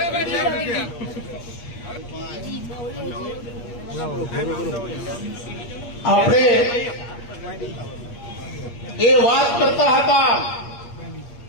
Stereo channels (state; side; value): late; right; 8.4 ms